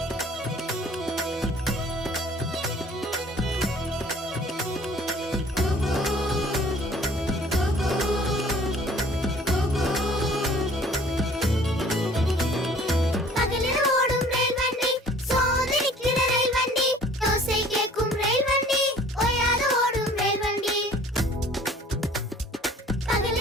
பகலில் ஓடும் ரயில் வண்டி, சோதனைக்கிற ரயில் வண்டி. ஓசை கேட்கும் ரயில் வண்டி, ஓயாது ஓடும் ரயில் வண்டி.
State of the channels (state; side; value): normal; both; correlation 0.52